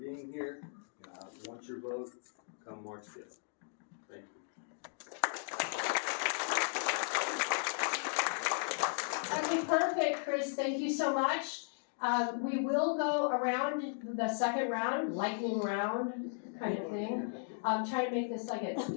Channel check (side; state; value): right; silent; digital silence